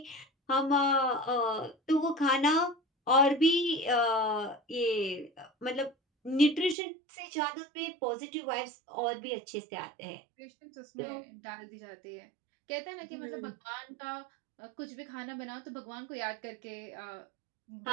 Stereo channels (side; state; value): left; drops out; at 6.8 s